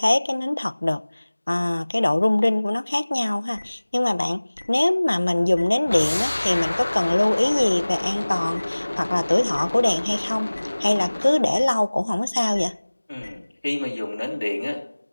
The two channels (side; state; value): both; inverted; correlation -1.00